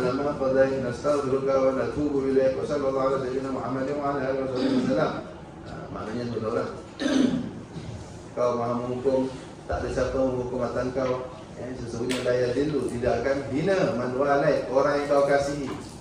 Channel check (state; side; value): identical; both; correlation 1.00